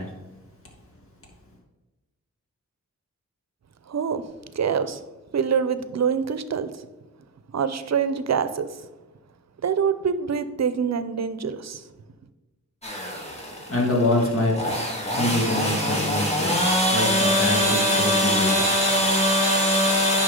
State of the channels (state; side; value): normal; both; correlation 0.10